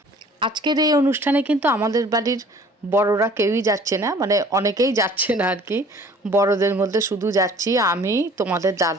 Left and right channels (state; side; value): normal; both; correlation 0.51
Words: আজকের এই অনুষ্ঠানে কিন্তু আমাদের বাড়ির বড়রা কেউই যাচ্ছে না, অনেকেই যাচ্ছে না আর কি। বড়দের মধ্যে শুধু যাচ্ছি আমি, তোমাদের